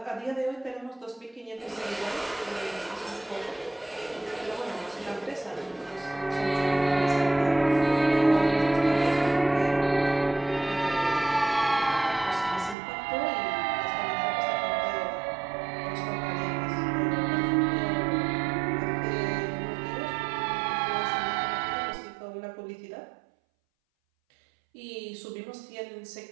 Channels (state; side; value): drops out; left; at 12.8 s